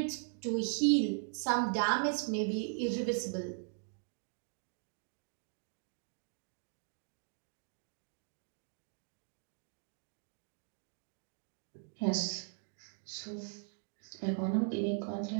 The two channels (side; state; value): left; silent; 52 dB below the other